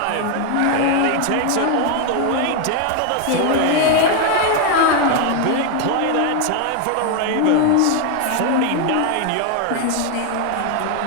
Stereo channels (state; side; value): different; both; correlation 0.01